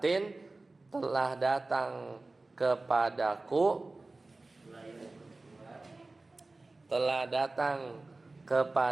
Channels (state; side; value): quieter; left; 3.2 dB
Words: telah datang kepadaku, telah datang